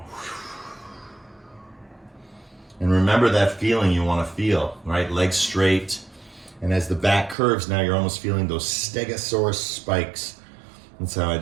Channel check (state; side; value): drops out; left; at 7.4 s